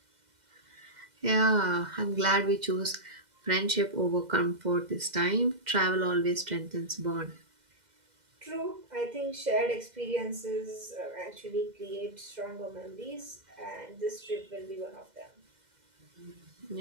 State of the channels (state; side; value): late; left; 2.0 ms